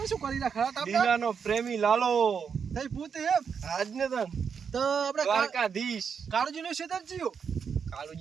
શું કરી રાખા આપણે? દીનાનો પ્રેમી લાલો. તઈ પૂતે એમ આજને તન તો આપણે દ્વારકાધીશ કાળુજી નું ક્ષેત્ર જીયો.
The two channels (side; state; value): left; quieter; 6.6 dB